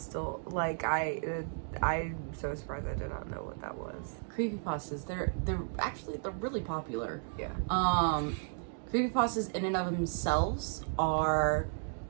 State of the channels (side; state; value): left; silent; digital silence